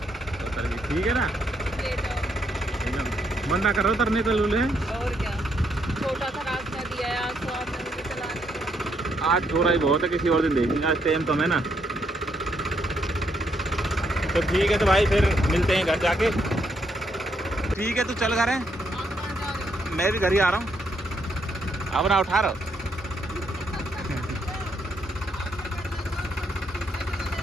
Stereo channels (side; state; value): both; normal; correlation 0.75